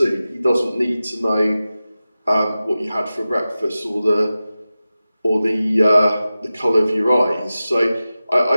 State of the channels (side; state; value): both; inverted; correlation -0.94